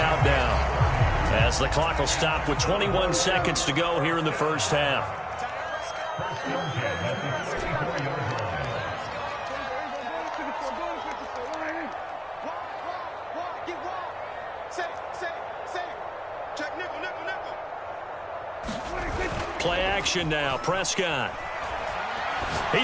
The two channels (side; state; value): both; identical; correlation 1.00